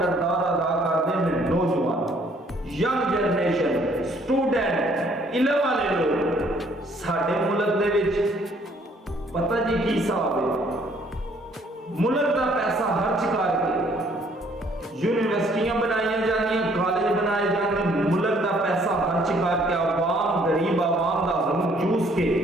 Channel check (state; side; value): normal; both; correlation 0.62